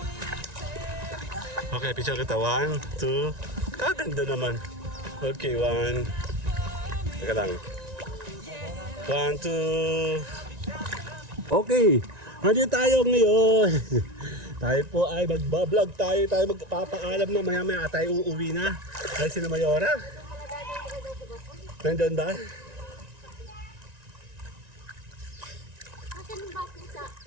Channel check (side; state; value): left; late; 1.9 ms